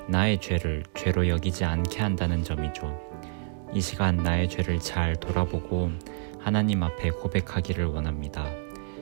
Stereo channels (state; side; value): silent; left; digital silence